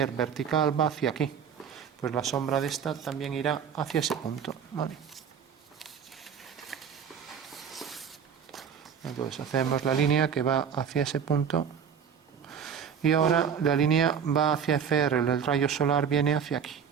vertical va hacia aquí. Pues la sombra de esta también irá hacia ese punto, ¿vale? Entonces hacemos la línea que va hacia ese punto y ahora la línea va hacia FR, el rayo solar viene hacia aquí.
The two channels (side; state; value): left; quieter; 7.4 dB